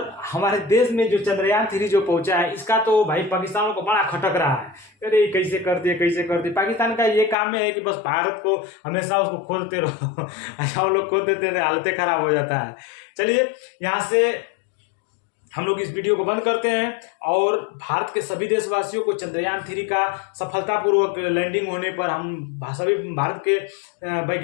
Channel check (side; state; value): right; drops out; at 7.4 s